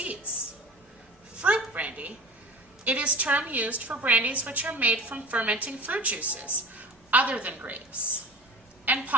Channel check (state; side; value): normal; both; correlation 0.38